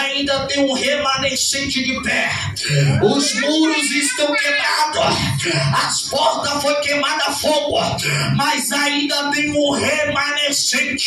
tem um remanescente de pé. Os muros estão quebrados, as portas foram queimadas a fogo, mas ainda tem um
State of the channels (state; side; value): identical; both; correlation 1.00